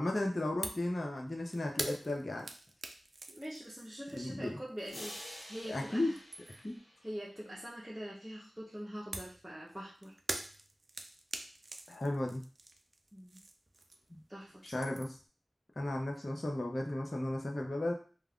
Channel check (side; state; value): both; normal; correlation 0.96